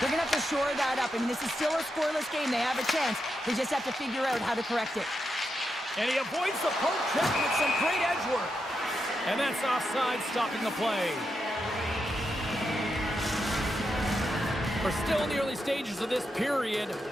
going to have to shore that up. I mean, this is still a scoreless game. They have a chance. They just have to figure out how to correct it. And he avoids the poke check with some great edge work. And that's offside, stopping the play. We're still in the early stages of this period.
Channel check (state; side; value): normal; both; correlation 0.85